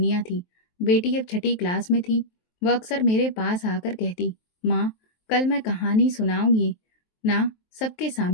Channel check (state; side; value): late; right; 23 ms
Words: थी। बेटी अब 6ठी क्लास में थी। वह अक्सर मेरे पास आकर कहती, माँ, कल मैं कहानी सुनाऊंगी ना सबके